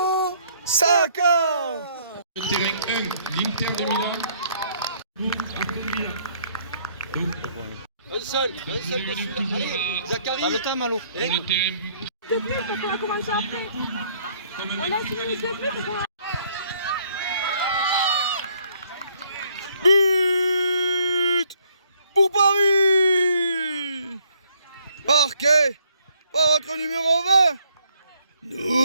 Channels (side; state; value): both; inverted; correlation -0.66